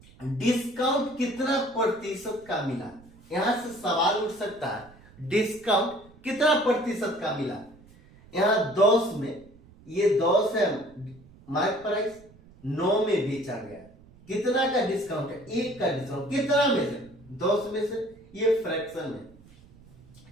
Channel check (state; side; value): noise; right; rumble, 24 dB below the sound